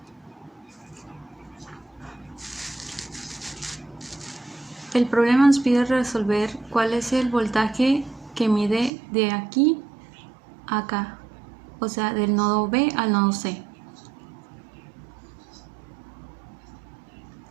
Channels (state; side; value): drops out; left; at 8.9 s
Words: el problema nos pide resolver cuál es el voltaje que mide de aquí a acá, o sea, del nodo B al nodo C.